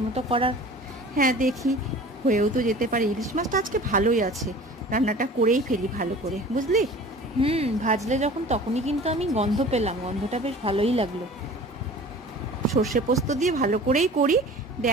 করার। হ্যাঁ, দেখি হয়েও তো যেতে পারে। ইলিশ মাছটা আজকে ভালোই আছে, রান্নাটা করেই ফেলি ভালো করে, বুঝলি? ভাজলে যখন তখনই কিন্তু আমি গন্ধ পেলাম, গন্ধটা বেশ ভালোই লাগলো। সর্ষে পোস্ত দিয়ে ভালো করেই করি,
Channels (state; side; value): normal; both; correlation 0.42